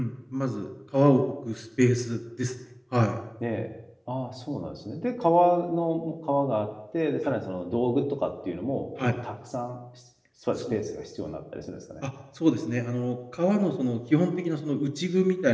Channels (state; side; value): identical; both; correlation 1.00